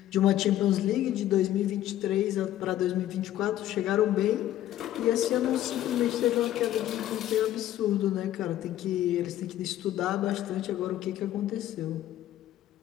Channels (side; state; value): right; quieter; 13.0 dB